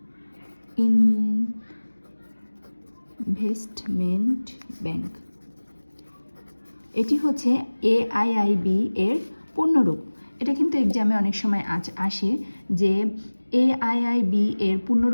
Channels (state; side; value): inverted; both; correlation -1.00